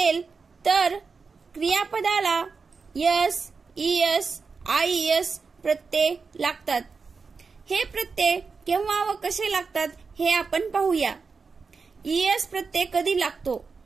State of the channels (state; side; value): quieter; left; 4.8 dB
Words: तर क्रियापदाला S, ES, IES प्रत्यय लागतात. हे प्रत्यय केव्हा व कसे लागतात हे आपण पाहूया. ES प्रत्यय कधी लागतो?